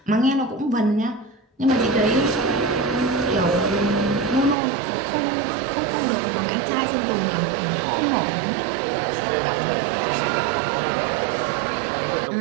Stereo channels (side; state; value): left; drops out; at 4.5 s